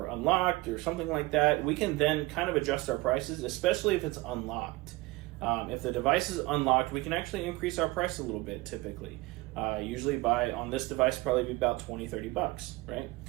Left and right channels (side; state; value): left; quieter; 21.2 dB